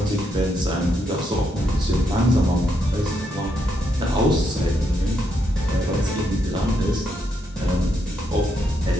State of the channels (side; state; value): both; normal; correlation 0.78